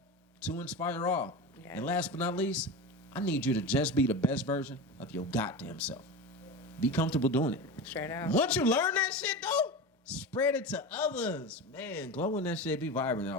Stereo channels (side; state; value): both; normal; correlation 0.25